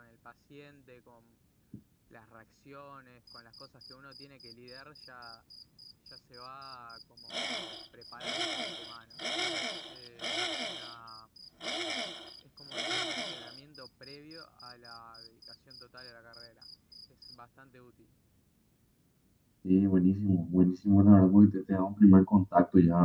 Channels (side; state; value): both; identical; correlation 1.00